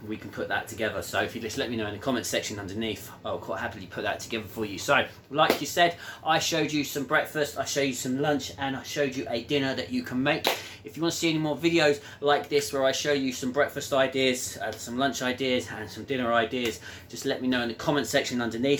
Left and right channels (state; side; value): identical; both; correlation 1.00